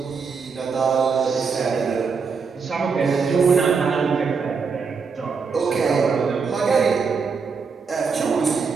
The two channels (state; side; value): quieter; left; 5.3 dB